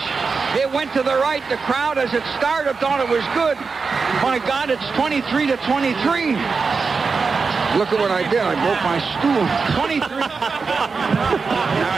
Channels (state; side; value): quieter; left; 4.8 dB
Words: It went to the right. The crowd, as it started, thought it was good. My God, it's 23-23. Look at what I did. I broke my stool. 23.